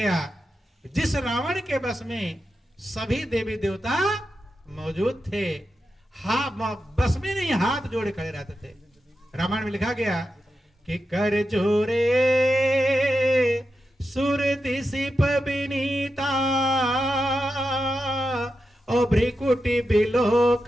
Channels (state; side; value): normal; both; correlation 0.89